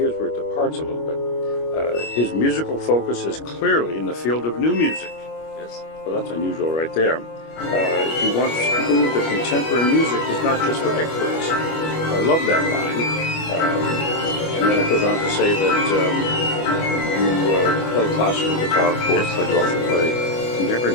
where it departs a little bit. His musical focus is clearly in the field of new music. Yes. Well, that's unusual right there. He wants to prove that contemporary music is not just for experts. I love that line. And then it goes on to say that you play classical guitar, of course, but you also play contemporary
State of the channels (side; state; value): right; late; 25 ms